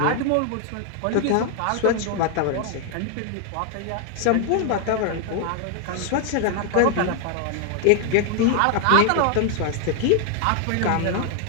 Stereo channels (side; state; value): both; different; correlation 0.00